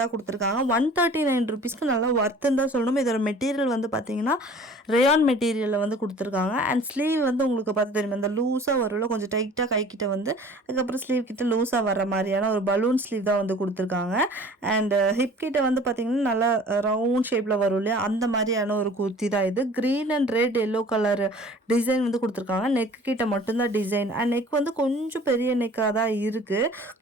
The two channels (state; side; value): normal; both; correlation 0.47